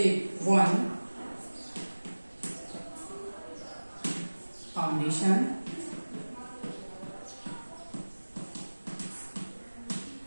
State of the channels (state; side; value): inverted; both; correlation -1.00